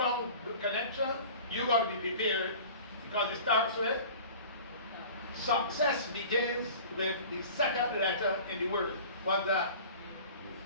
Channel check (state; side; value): inverted; both; correlation -0.42